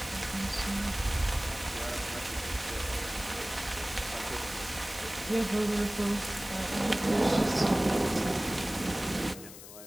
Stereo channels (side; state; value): left; noise; hiss, 14 dB below the sound